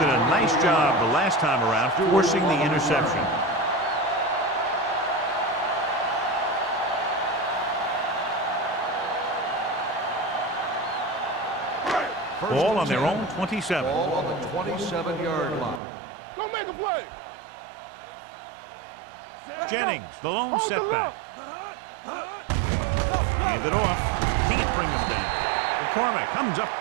a nice job the last time around forcing the interception. Ball on their own 27. Ball on the 27-yard line. Go make a play. They soft, man. Jennings, the lone setback. Hand it off. Can't bring them down. McCormick comes up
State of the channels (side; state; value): left; drops out; at 15.8 s